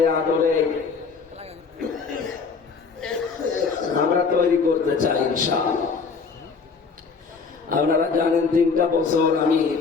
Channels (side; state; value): right; quieter; 5.1 dB